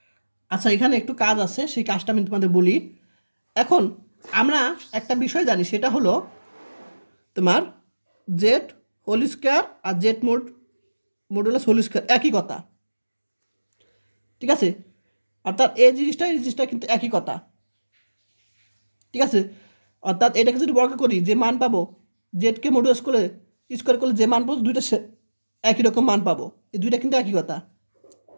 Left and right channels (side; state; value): both; inverted; correlation -1.00